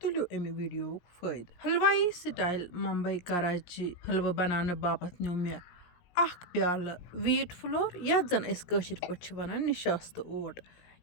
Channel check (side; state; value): right; late; 17 ms